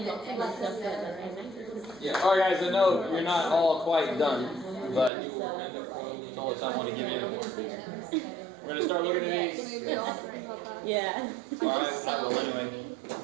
know, and stuff that. Yeah. Alright guys, I know you're not all quite done, but You will end up foiling. that's all the time I want to give you. We're going to start looking at these. Maybe I'll help out. Yeah. Alright, I will anyway.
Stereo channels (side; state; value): left; drops out; at 5.1 s